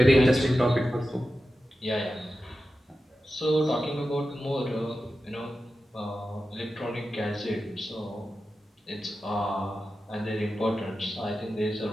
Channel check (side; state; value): both; normal; correlation 0.92